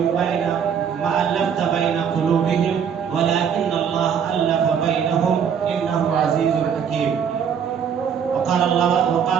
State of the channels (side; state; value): left; quieter; 7.6 dB